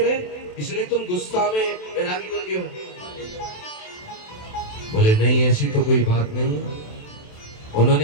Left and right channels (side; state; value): right; late; 27 ms